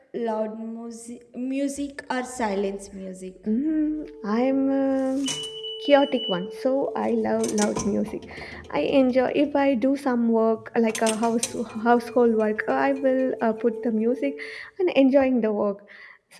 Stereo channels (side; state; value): both; identical; correlation 1.00